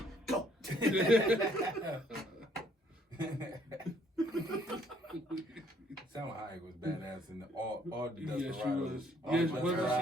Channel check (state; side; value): normal; both; correlation 0.64